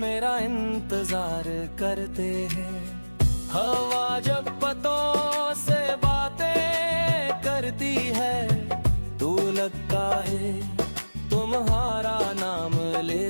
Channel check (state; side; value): inverted; both; correlation -1.00